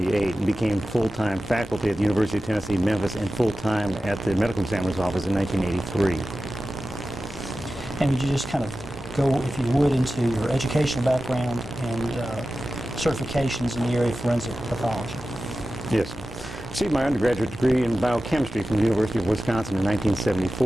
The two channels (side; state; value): both; normal; correlation 0.93